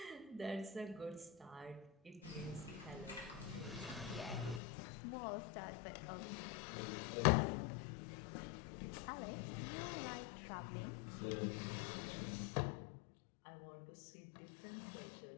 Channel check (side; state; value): right; drops out; at 4.6 s